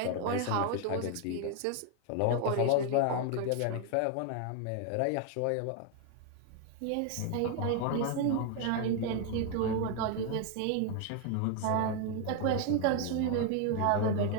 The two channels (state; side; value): different; both; correlation 0.00